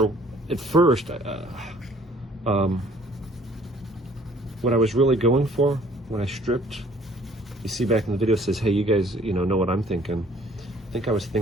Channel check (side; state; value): both; normal; correlation 0.57